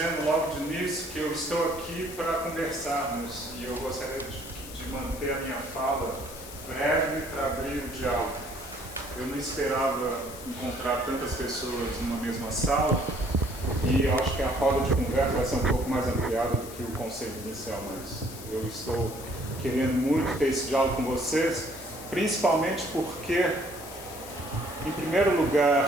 logo de início que eu estou aqui para conversarmos e eu gostaria de manter a minha fala breve para abrir o diálogo. Eu não esperava encontrar tantas pessoas numa mesma sala e acho que a roda de conversa vai ser um pouco mais ampliada do que o conceito inicial, mas eu estou querendo muito ter esse diálogo com vocês, principalmente porque, em primeiro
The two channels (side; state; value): left; noise; hiss, 14 dB below the sound